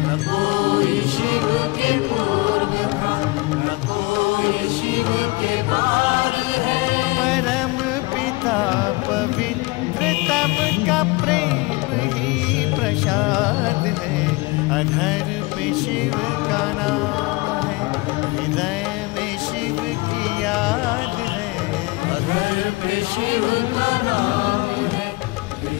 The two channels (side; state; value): right; quieter; 23.9 dB